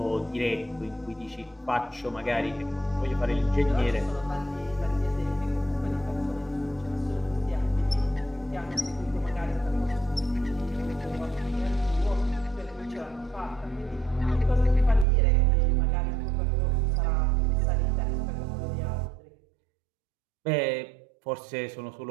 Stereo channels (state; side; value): drops out; left; at 15.1 s